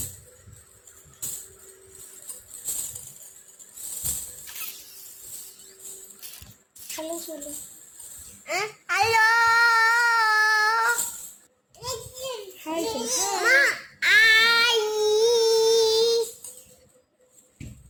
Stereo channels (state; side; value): identical; both; correlation 1.00